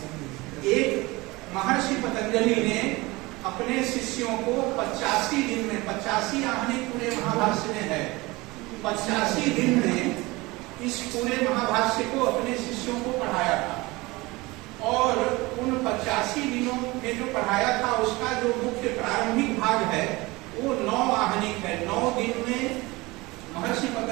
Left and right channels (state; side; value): quieter; left; 22.3 dB